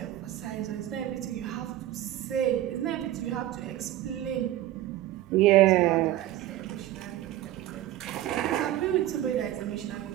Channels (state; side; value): quieter; left; 13.9 dB